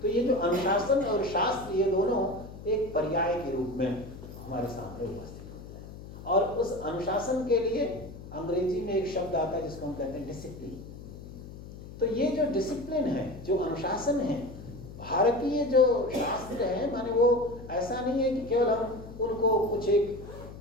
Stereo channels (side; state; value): left; noise; hum, 14 dB below the sound